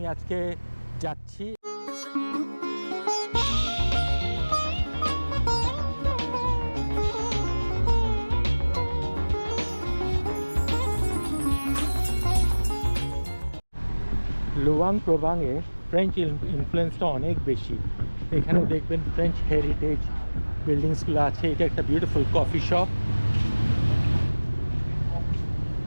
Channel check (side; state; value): both; inverted; correlation -1.00